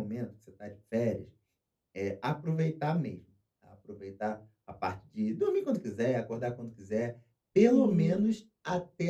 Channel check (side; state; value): both; identical; correlation 1.00